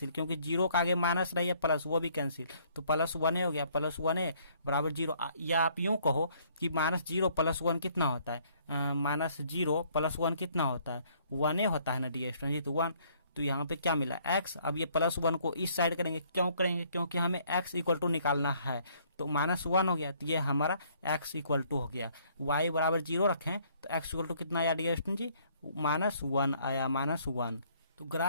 क्योंकि 0 का आगे माइनस रही है प्लस, वो भी कैंसिल। तो +1a हो गया, +1a = 0। या आप यूं कहो कि -0 + 1 कितना होता है, -0 + 1 कितना होता है, 1a होता है ना डियर स्टूडेंट जी, तो 1। तो यहाँ पे क्या मिला x। अब ये +1 को इस साइड करेंगे, क्यों करेंगे, क्योंकि हमें x = निकालना है। तो -1 हो गया, तो ये हमारा x = हो गया। y = 0 रखें तो x = कितना आया डियर स्टूडेंट जी, -1 आया, -1। तो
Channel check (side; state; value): both; inverted; correlation -0.63